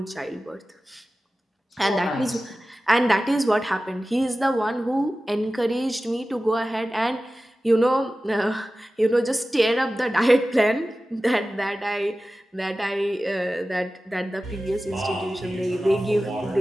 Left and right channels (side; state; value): both; normal; correlation 0.95